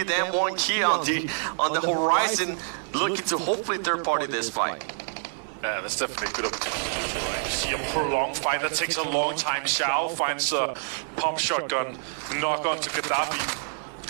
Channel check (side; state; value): left; silent; 60 dB below the other